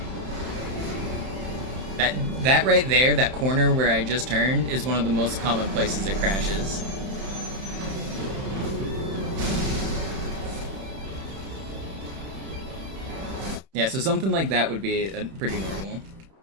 That right there, that corner where I just turned, is one of the most common places it crashes. Yeah, so something like that would be pretty normal.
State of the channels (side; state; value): left; late; 31 ms